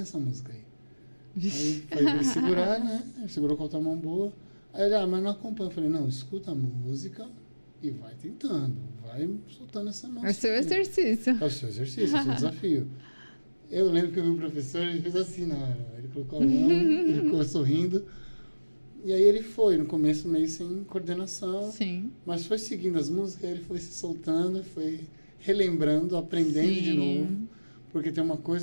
essa música aí. Aí foi pra ele segurar, né? Ele segurou com a outra mão boa. Aí ele, mas não acompanha. Eu falei, não, escuta a música e vai tentando, vai soltando essa mão. É o seu exercício. É o seu exercício, é o seu desafio. Eu lembro que eu vi o professor, ele fez assim na hora. Ele colocou a mão, ele ficou sorrindo. E aí ele foi, no começo meio sem coordenação. Sim. Mas foi seguindo as músicas, ele foi se soltando, foi relembrando, aprendendo de novo. Porque tem uma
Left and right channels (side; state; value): both; inverted; correlation -1.00